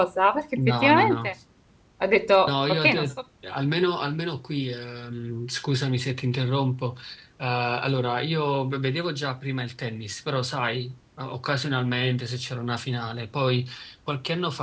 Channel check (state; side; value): identical; both; correlation 1.00